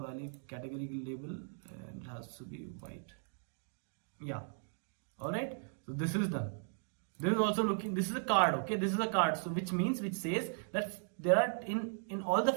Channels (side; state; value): left; silent; digital silence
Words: category label, and it has to be white. Yeah, all right, so this is done. This is also looking, this is a card. Okay, this is a card, so which says that there are in all the